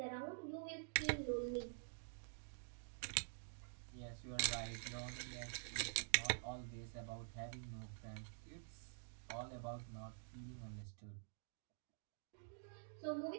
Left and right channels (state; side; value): silent; left; digital silence